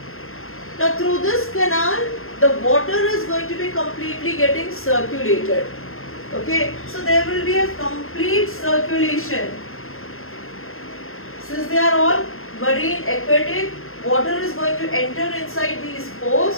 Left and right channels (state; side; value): late; right; 0.61 ms